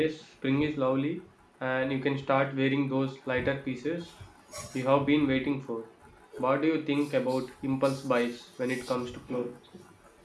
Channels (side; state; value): both; identical; correlation 1.00